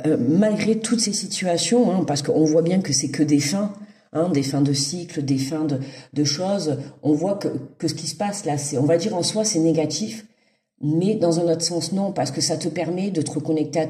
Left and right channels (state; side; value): identical; both; correlation 1.00